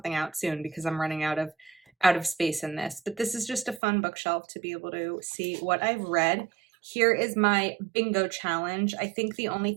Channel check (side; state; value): left; drops out; at 3.8 s